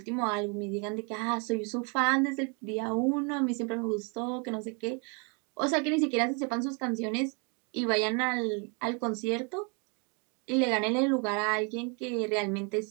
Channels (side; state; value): left; quieter; 35.2 dB